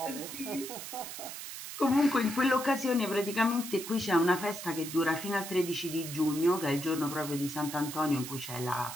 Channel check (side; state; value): right; noise; hiss, 9 dB below the sound